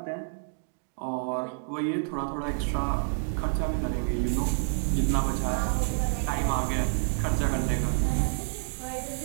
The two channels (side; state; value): left; silent; digital silence